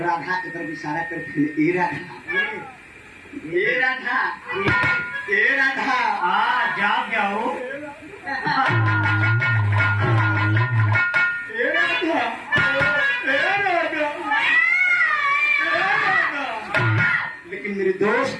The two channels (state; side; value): identical; both; correlation 1.00